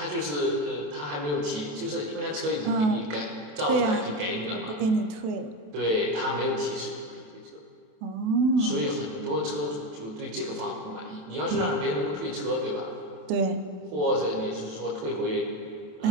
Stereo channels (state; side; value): late; left; 27 ms